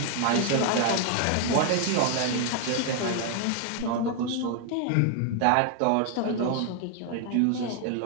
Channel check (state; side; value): different; both; correlation 0.00